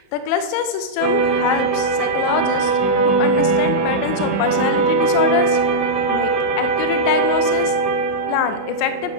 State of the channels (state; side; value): late; right; 28 ms